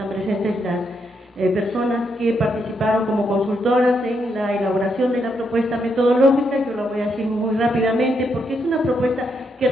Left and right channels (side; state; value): both; normal; correlation 0.79